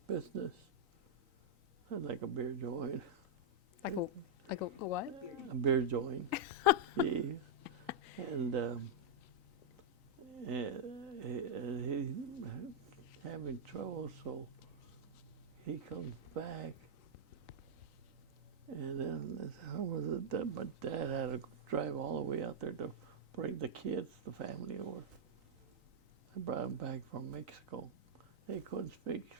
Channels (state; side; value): late; left; 3.9 ms